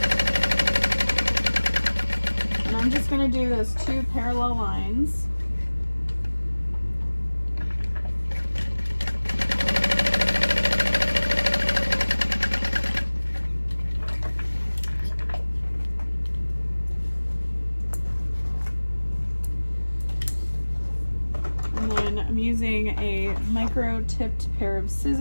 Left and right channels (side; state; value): both; inverted; correlation -1.00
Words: And I'm just going to do those 2 parallel lines. And then I'm using a micro tipped pair of